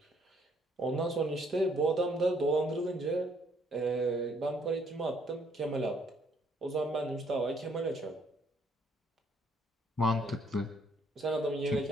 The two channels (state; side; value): normal; both; correlation 0.67